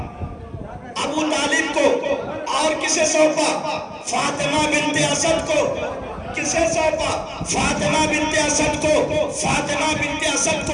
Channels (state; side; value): identical; both; correlation 1.00